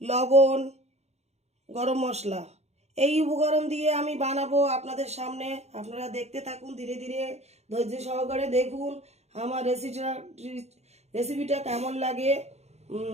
লবণ, গরম মশলা। এই উপকরণ দিয়ে আমি বানাবো আপনাদের সামনে। আপনারা দেখতে থাকুন, ধীরে ধীরে ধৈর্য সহকারে দেখুন আমার রেসিপিটা কেমন লাগে।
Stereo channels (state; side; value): late; left; 0.31 ms